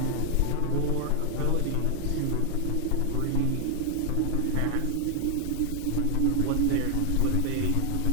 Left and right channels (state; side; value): different; both; correlation 0.00